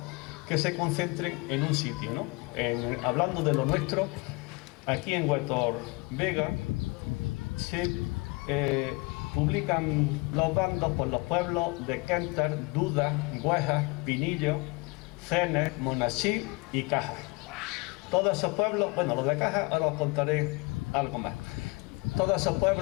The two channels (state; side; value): quieter; right; 26.9 dB